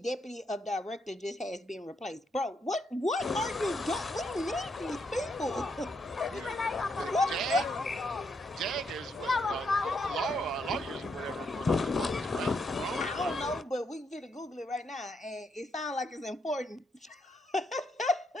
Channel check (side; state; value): both; normal; correlation 0.77